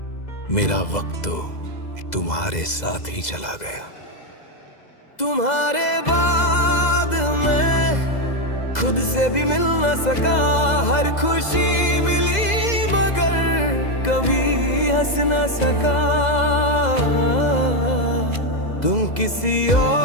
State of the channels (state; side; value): late; right; 2.0 ms